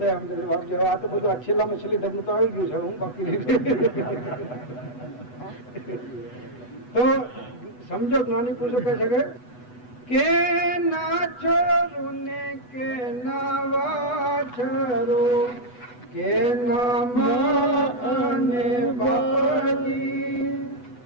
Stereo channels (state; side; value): late; right; 8.1 ms